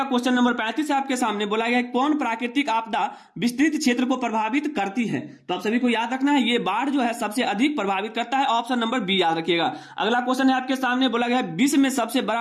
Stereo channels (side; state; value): both; identical; correlation 1.00